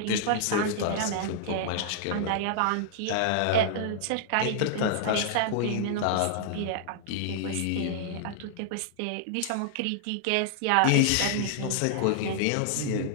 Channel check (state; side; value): different; both; correlation -0.01